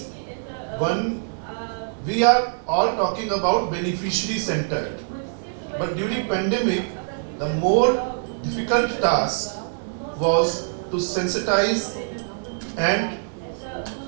one, we are all talking about beneficiary centered. But during pandemic, the more difficult task was to sensitize and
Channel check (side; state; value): left; silent; digital silence